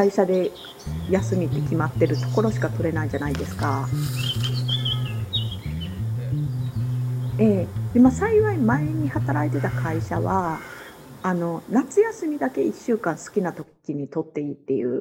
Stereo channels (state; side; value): identical; both; correlation 1.00